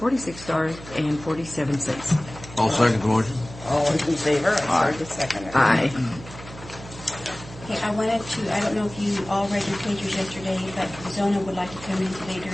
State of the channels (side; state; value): right; noise; hum, 16 dB below the sound